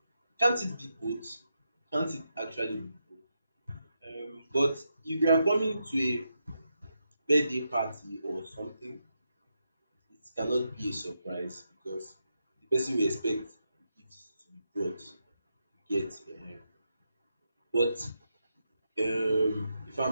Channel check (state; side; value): inverted; both; correlation -0.84